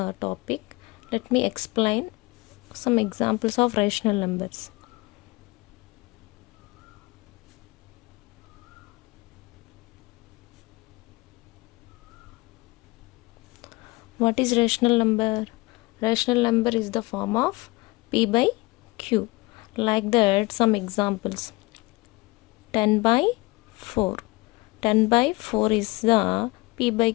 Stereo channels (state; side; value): quieter; right; 23.2 dB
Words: topic, let me explain some examples of rational numbers. What is rational number? Rational number is the form of P by Q. Like that, some examples. 10 by 4. 10 by 4 is the P by